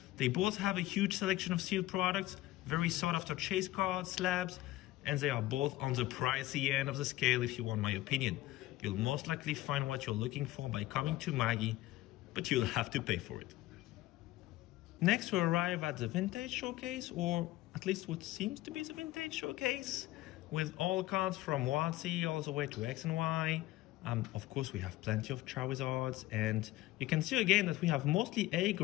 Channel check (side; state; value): right; quieter; 16.8 dB